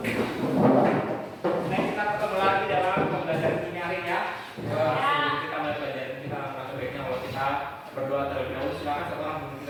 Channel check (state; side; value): identical; both; correlation 1.00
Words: Nah, kita ketemu lagi dalam pembelajaran ini hari ya. Sebelum kita mulai pelajaran kita akan sebaiknya kalau kita berdoa terlebih dahulu. Silakan satu orang memimpin